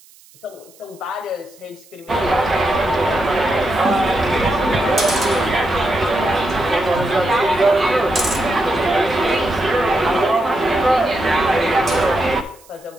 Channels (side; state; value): right; noise; hiss, 27 dB below the sound